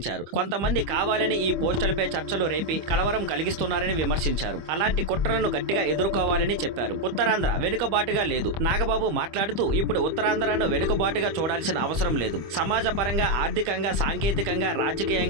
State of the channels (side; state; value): left; late; 25 ms